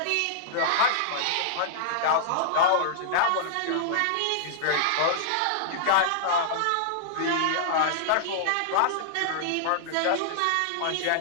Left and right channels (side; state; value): both; different; correlation -0.02